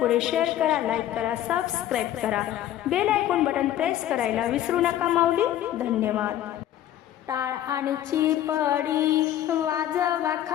शेअर करा, लाईक करा, सबस्क्राईब करा, बेल आयकॉन बटन प्रेस करायला विसरू नका माऊली। धन्यवाद। टाळ आणि चिपडी वाजवा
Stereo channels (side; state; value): right; quieter; 12.3 dB